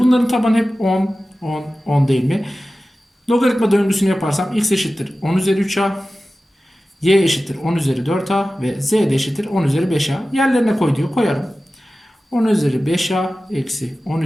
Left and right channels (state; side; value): normal; both; correlation 0.95